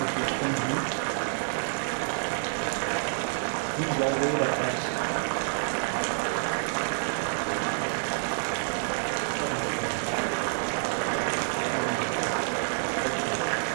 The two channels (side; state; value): left; silent; digital silence